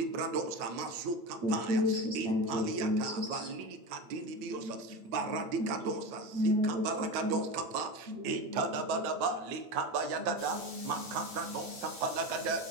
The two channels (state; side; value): late; left; 8.7 ms